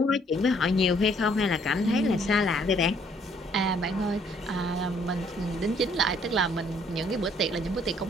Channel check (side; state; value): both; normal; correlation 0.64